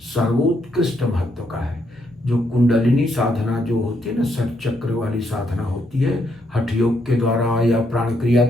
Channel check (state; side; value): normal; both; correlation 0.76